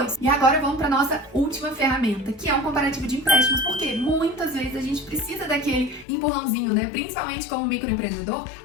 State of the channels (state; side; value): drops out; right; at 6.1 s